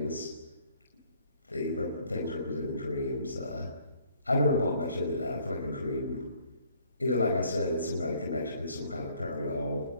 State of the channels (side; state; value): both; inverted; correlation -0.62